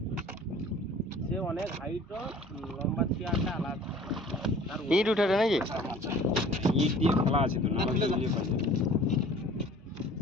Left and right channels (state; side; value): normal; both; correlation 0.49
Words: সে অনেক হাইটও লম্বা চেয়ারটা আলাদা। ইট উঠে নাকি? ইট দিয়ে খোলা আছে তো, না দিয়ে পাচ্ছে।